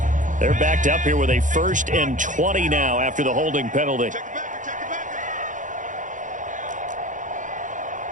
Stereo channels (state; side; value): late; left; 0.37 ms